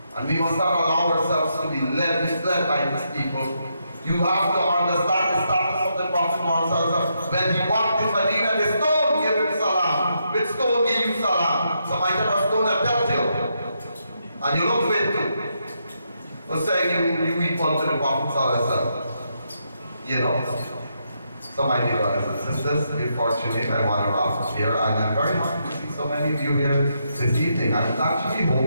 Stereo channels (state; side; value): inverted; both; correlation -0.80